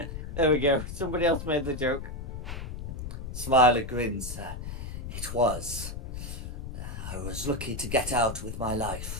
There we go. Somebody else made the joke. Smiler grins. It was. I was lucky to get out with my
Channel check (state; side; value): noise; left; rumble, 7 dB below the sound